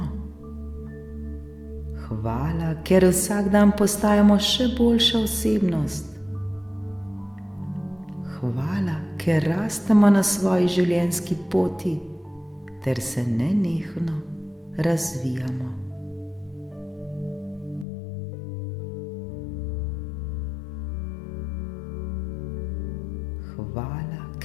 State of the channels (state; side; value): drops out; right; at 17.9 s